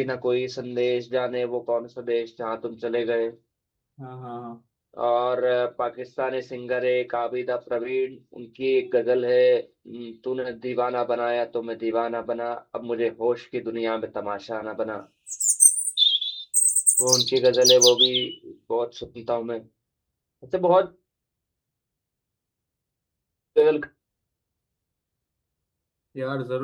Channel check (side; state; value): both; identical; correlation 1.00